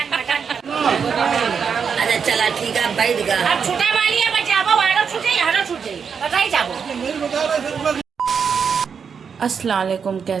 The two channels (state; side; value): quieter; left; 6.5 dB